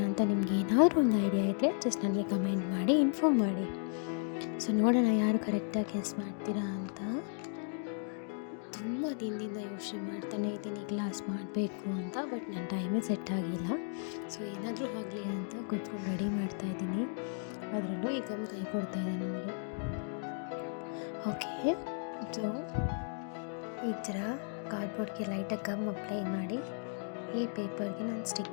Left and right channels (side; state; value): right; silent; 55 dB below the other